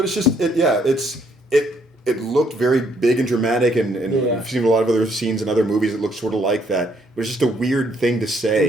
it's just it looked very big and dramatic and Yeah. we've seen a lot of other scenes in other movies that look sort of like that. But it's just a weird thing to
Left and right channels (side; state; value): both; normal; correlation 0.69